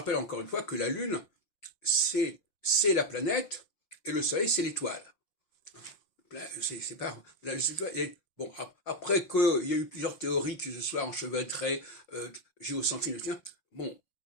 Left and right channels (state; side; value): late; right; 5.7 ms